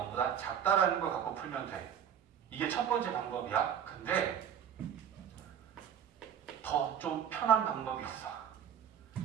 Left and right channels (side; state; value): left; quieter; 8.7 dB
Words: 작다라는 걸 갖고 풀면 돼. 이게 첫 번째 방법이야. 근데 더 좀 편한 방법이 있어.